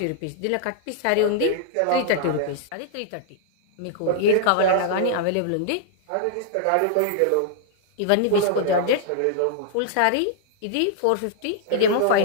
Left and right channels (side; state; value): both; different; correlation -0.01